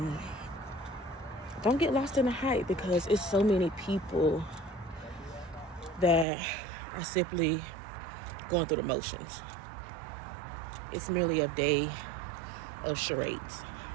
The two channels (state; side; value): drops out; left; at 6.2 s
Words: Don't get lost in the hype, because it's so many people that are simply going through the motions. It's merely a day of charades,